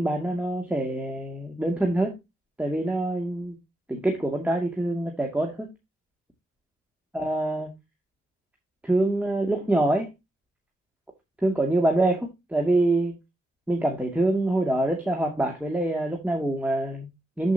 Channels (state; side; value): normal; both; correlation 0.85